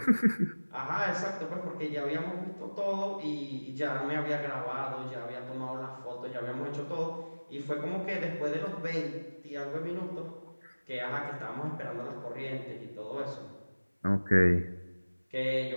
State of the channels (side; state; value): both; inverted; correlation -1.00